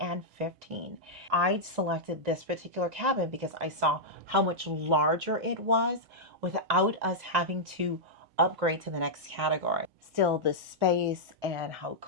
15. I selected this particular cabin because I saw how much larger it was without us having to upgrade to the next category. Still, the space and how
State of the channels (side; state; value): both; normal; correlation -0.08